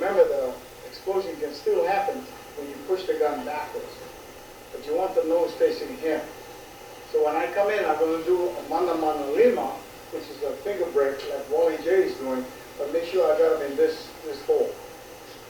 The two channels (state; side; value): identical; both; correlation 1.00